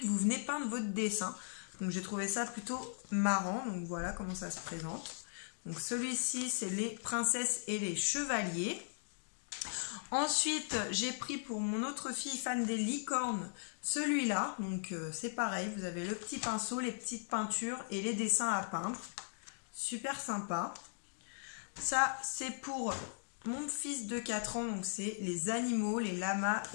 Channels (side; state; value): right; silent; digital silence